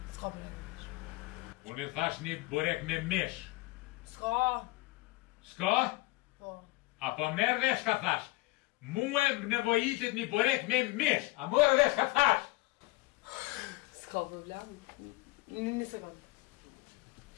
S'ka burek me mish. Unë i thash një burek me mish. S'ka? S'ka? Po. Apo merë dhe shka thash. Muë më nevojitit një burek me mish. A mërë dhe shka thash. S'ka problem. Një sekundë.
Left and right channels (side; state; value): right; quieter; 20.9 dB